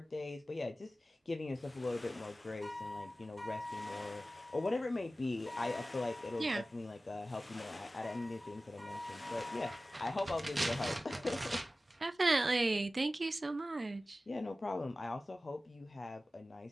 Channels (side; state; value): both; normal; correlation 0.96